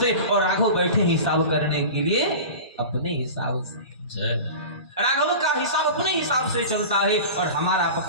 और राघव बैठे हिसाब करने के लिए अपने हिसाब से। राघव का हिसाब अपने हिसाब से चलता है और हमारा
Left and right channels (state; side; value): inverted; both; correlation -0.33